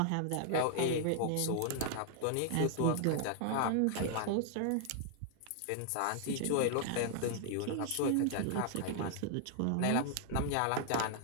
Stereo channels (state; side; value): different; both; correlation 0.00